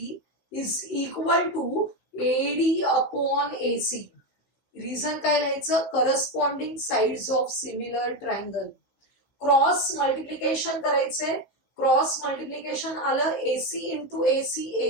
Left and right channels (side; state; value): right; late; 15 ms